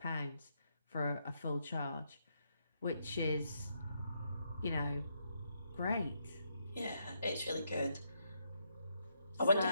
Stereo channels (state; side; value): inverted; both; correlation -0.78